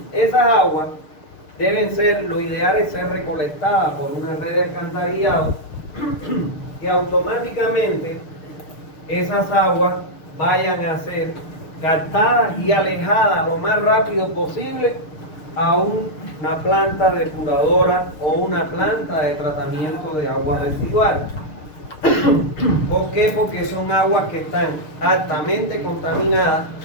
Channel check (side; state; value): right; late; 6.6 ms